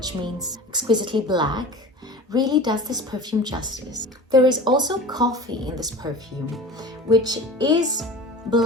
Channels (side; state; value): both; normal; correlation 0.35